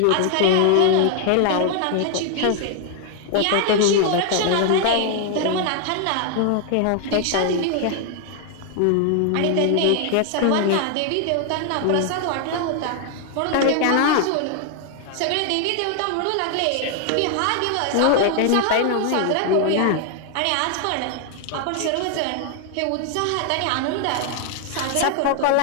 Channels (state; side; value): different; both; correlation 0.00